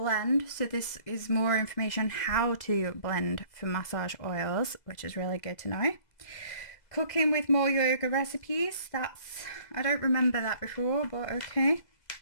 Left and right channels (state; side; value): late; right; 2.0 ms